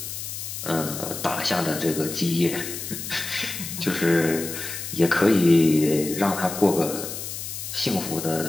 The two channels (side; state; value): left; noise; hiss, 7 dB below the sound